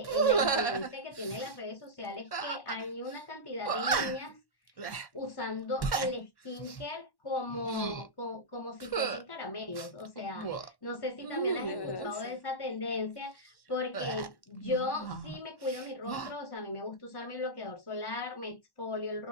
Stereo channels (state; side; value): late; right; 1.1 ms